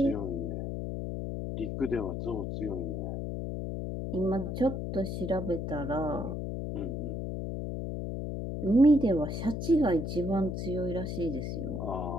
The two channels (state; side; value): noise; left; hum, 4 dB below the sound